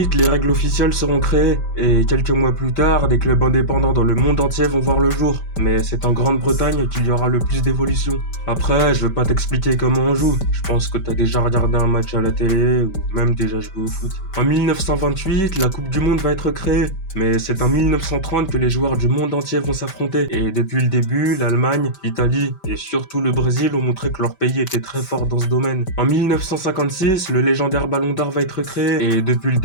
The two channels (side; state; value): right; late; 5.2 ms